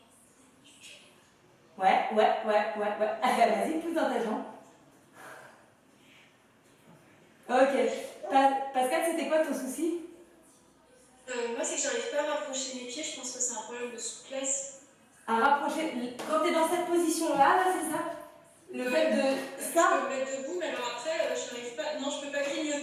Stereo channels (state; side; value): identical; both; correlation 1.00